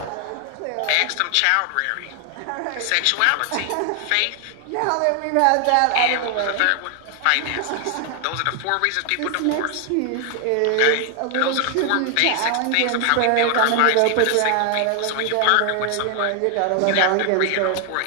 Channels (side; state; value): both; different; correlation 0.00